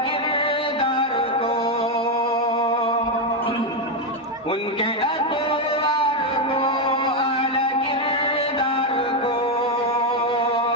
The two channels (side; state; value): both; normal; correlation 0.05